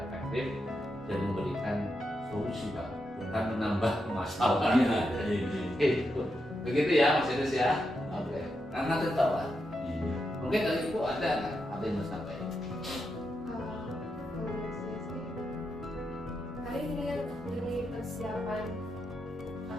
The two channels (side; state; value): both; normal; correlation 0.85